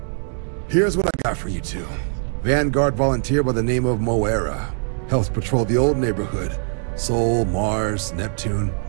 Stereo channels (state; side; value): silent; left; digital silence